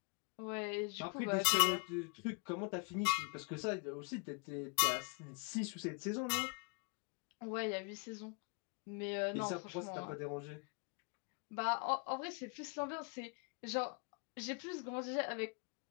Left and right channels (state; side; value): quieter; right; 34.8 dB